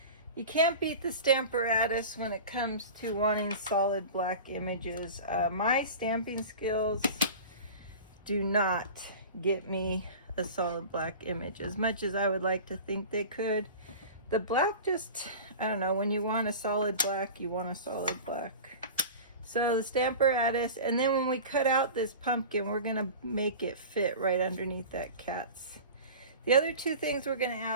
you can't beat the Stamparatus when it comes to wanting solid black images. My stamping skills do not get me a solid black image as much as I would like to think they could. The black just, I don't know, when you want a solid black, you want a solid black. So the Stamparatus, and then when we cut out this pumpkin, we're gonna make it fit right underneath that cat's. The other two things we're gonna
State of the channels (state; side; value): inverted; both; correlation -0.35